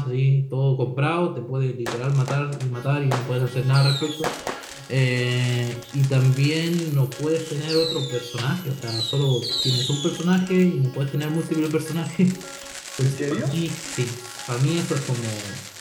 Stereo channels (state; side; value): identical; both; correlation 1.00